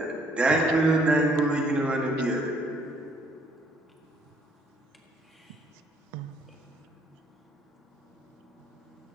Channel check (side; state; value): both; normal; correlation 0.65